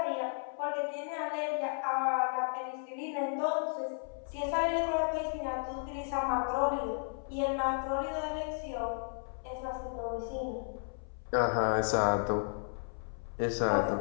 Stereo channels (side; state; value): right; silent; 55 dB below the other